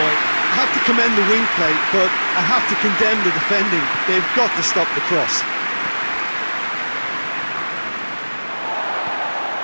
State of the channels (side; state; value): both; inverted; correlation -1.00